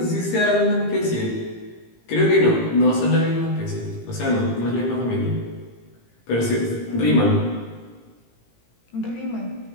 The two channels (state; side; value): late; right; 18 ms